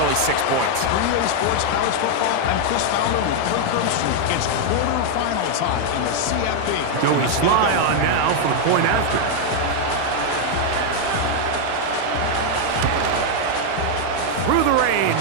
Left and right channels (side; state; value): both; different; correlation 0.00